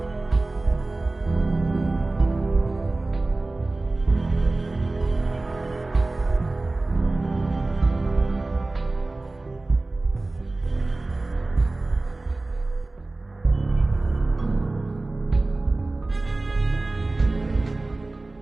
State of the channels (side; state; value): left; quieter; 3.1 dB